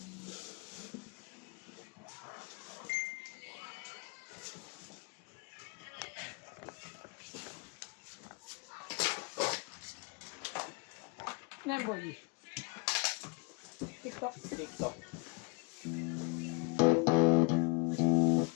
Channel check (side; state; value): right; quieter; 32.4 dB